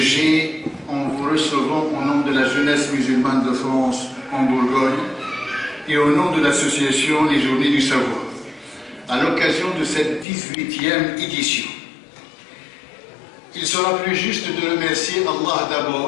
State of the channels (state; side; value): drops out; right; at 10.2 s